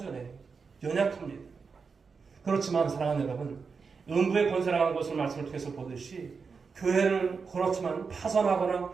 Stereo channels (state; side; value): quieter; left; 5.2 dB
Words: 연약합니다. 그렇지만 사랑하는 여러분, 음부의 권세라고 하는 것을 말씀을 통해서 보듯이 교회를 그렇지만 파손하거나